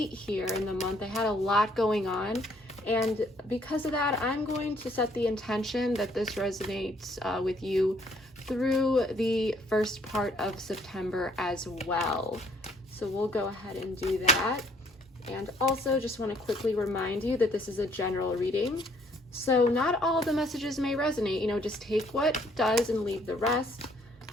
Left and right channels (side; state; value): both; normal; correlation 0.64